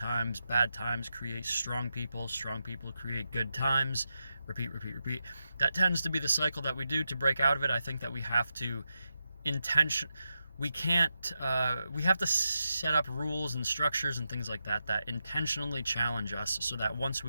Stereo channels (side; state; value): both; inverted; correlation -0.88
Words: create strong people create good times, repeat. That tends to be the cycle that we do. To break out of it, I think that we have to we have to set up rules and structures and things like that that intentionally challenge us, so that once